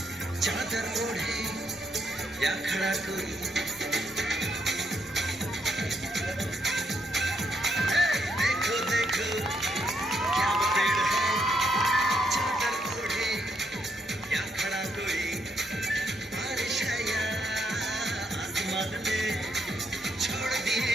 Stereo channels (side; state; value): both; normal; correlation 0.76